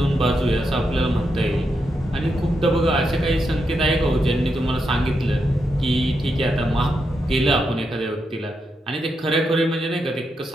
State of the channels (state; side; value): normal; both; correlation 0.84